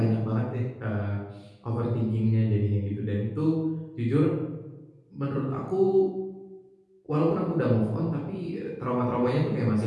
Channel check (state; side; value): identical; both; correlation 1.00